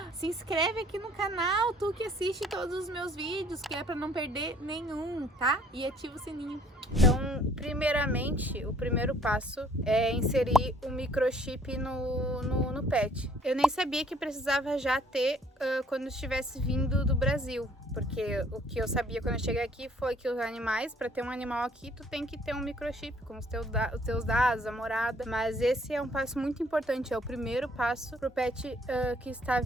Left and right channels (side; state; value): both; normal; correlation 0.60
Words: se inscreve aqui no canal, tu que assiste todos os meus vídeos, que é pra não perder nenhum, tá? E ativa o sininho. Então, primeiramente, o primeiro passo é inserir o microchip no pet. Eu nem sabia que precisava já ter quando estivesse vindo do Brasil, porque o que eu sabia quando eu cheguei aqui foi que os animais, para ter um animal aqui, tu tem que ter um microchip com os teus dados, a morada. Mas esse é um passo muito importante, é o primeiro passo pro pet que está